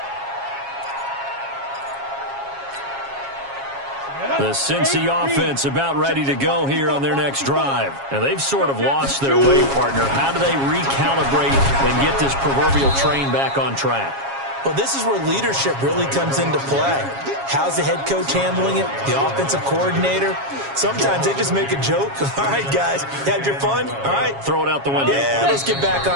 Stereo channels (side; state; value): left; late; 7.3 ms